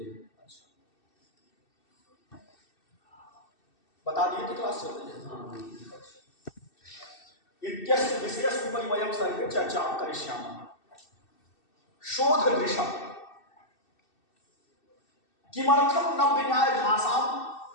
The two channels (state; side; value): late; right; 2.6 ms